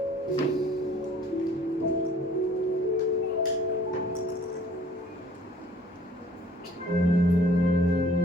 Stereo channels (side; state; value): both; normal; correlation 0.55